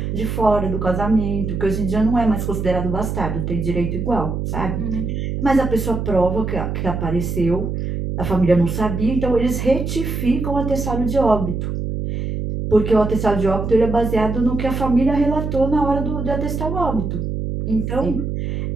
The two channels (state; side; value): noise; right; hum, 3 dB below the sound